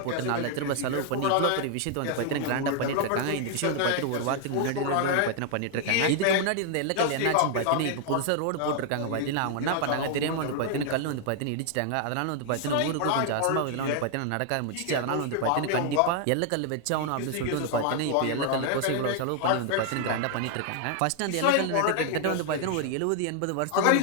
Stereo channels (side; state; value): both; different; correlation 0.00